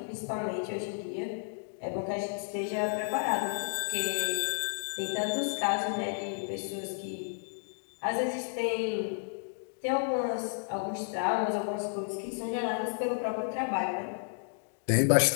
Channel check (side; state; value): right; silent; digital silence